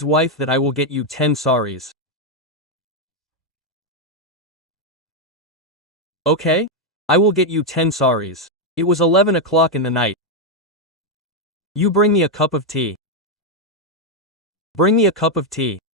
wife that I will get you 10 saris. Okay? I will get you 10 saris. It was 11 o'clock in the night. You bring me a cup of tea. Bring me a cup of tea.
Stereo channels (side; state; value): both; normal; correlation 0.03